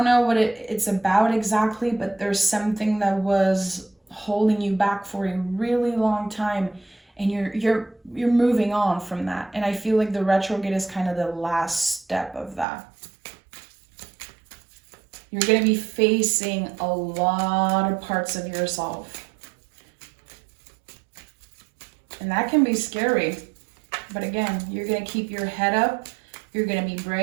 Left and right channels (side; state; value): left; drops out; at 12.7 s